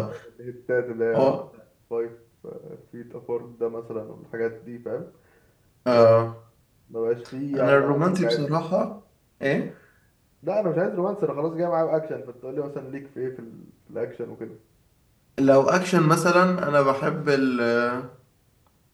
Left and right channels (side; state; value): both; identical; correlation 1.00